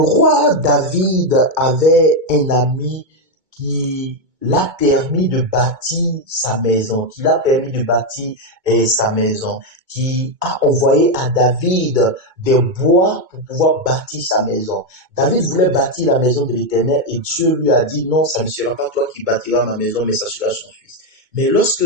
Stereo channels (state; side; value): late; left; 2.2 ms